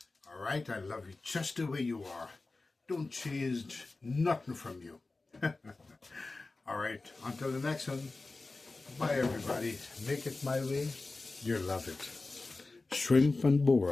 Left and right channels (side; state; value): right; quieter; 3.5 dB